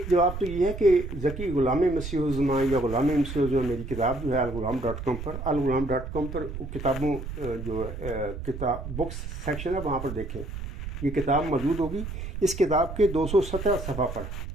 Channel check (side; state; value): right; noise; rumble, 8 dB below the sound